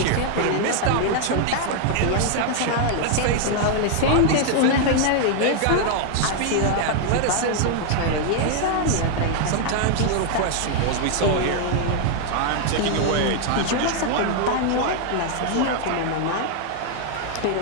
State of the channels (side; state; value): both; different; correlation 0.00